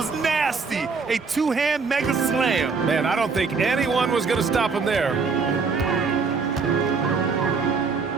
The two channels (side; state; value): left; quieter; 4.9 dB